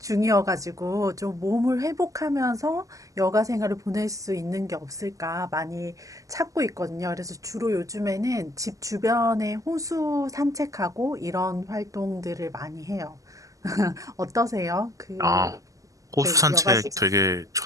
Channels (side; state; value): left; late; 0.16 ms